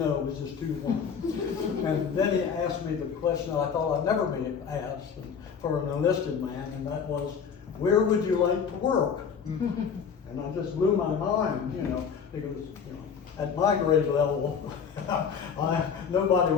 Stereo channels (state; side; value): quieter; right; 6.6 dB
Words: it was just 2-1. And then he asked me the question I thought I'd never be asked for an enlisted man, and that was, where would you like to work? And I just blew my mind, you know, because, you know, at my grade level, nobody